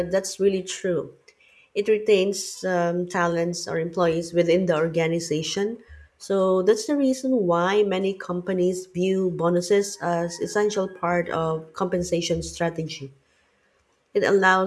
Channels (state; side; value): identical; both; correlation 1.00